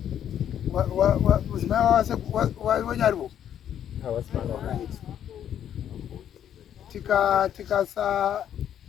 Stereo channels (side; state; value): right; quieter; 9.9 dB